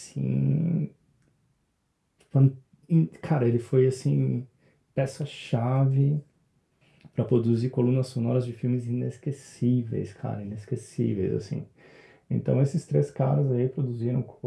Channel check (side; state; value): both; identical; correlation 1.00